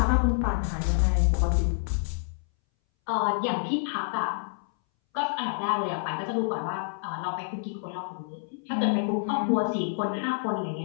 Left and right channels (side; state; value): right; silent; 59 dB below the other